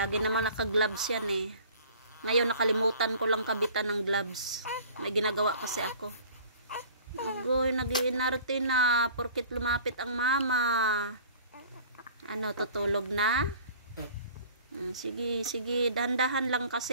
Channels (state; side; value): inverted; both; correlation -0.47